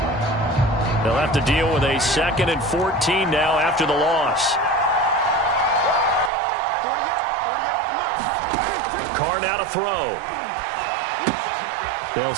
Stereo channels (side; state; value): left; drops out; at 6.3 s